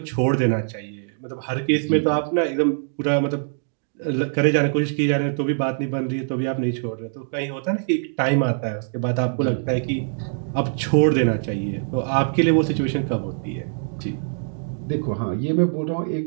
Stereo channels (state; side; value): silent; left; digital silence